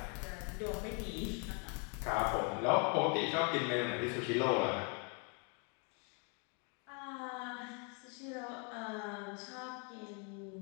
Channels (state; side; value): quieter; right; 35.9 dB